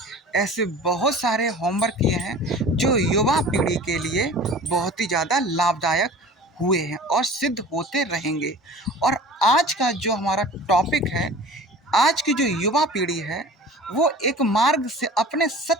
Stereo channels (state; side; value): normal; both; correlation 0.41